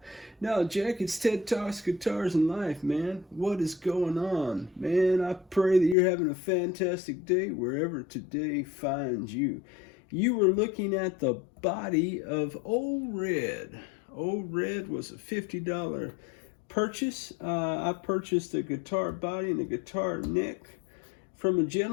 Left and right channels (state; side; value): drops out; right; at 6.0 s